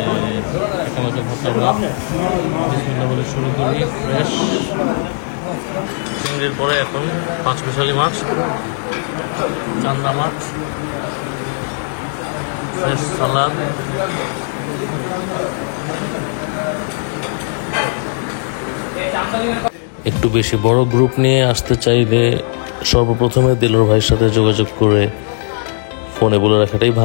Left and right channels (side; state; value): right; silent; 60 dB below the other